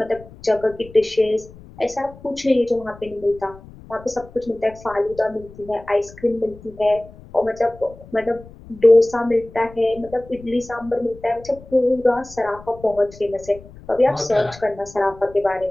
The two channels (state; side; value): noise; left; rumble, 20 dB below the sound